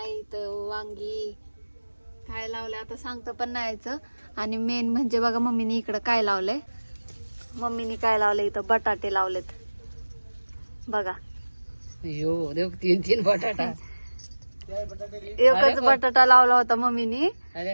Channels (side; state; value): both; inverted; correlation -1.00